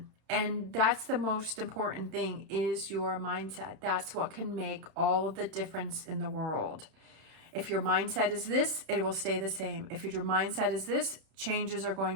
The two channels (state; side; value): late; left; 31 ms